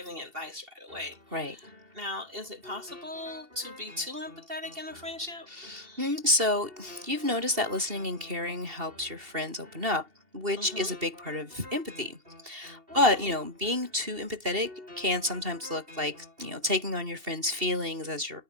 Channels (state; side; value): late; left; 2.7 ms